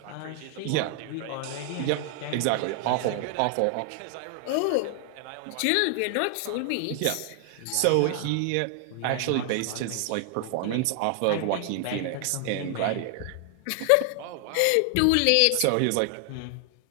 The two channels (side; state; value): both; different; correlation 0.00